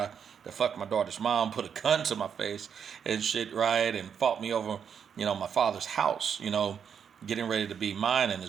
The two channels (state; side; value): quieter; left; 7.4 dB